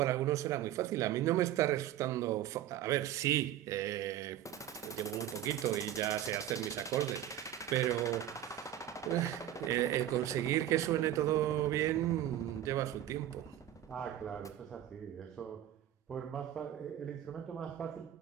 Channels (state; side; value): quieter; left; 12.1 dB